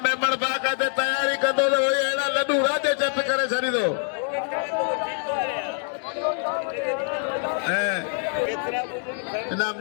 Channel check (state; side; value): silent; right; 56 dB below the other